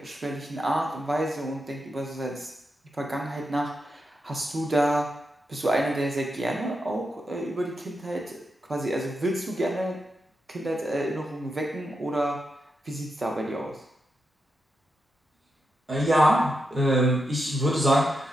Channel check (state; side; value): normal; both; correlation 0.86